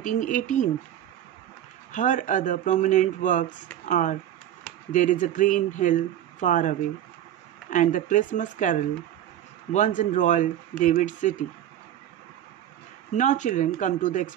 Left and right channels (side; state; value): left; quieter; 11.4 dB